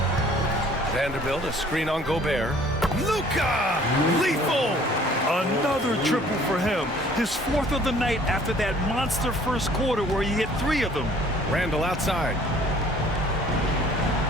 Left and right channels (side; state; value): both; normal; correlation 0.55